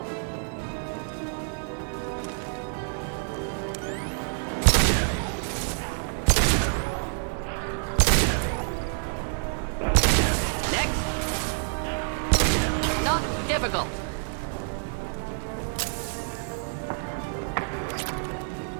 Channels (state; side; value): silent; left; 60 dB below the other